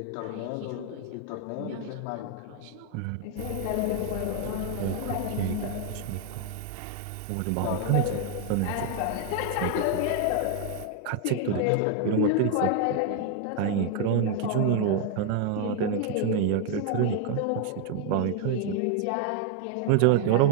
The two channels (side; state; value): both; different; correlation 0.00